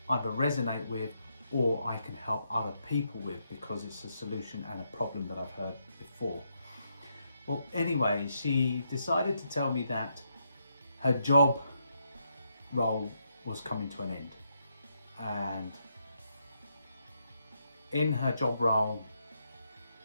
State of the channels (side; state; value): both; inverted; correlation -0.79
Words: either resonate with or I can help other people with because it's a solution and a problem that I've heard before. Well, anyway, she decided to tell me that her job role was coming to an end, and in her job role